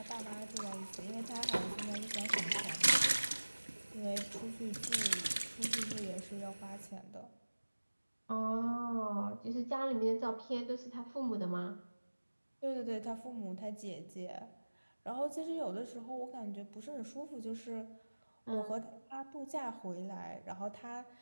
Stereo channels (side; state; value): both; inverted; correlation -1.00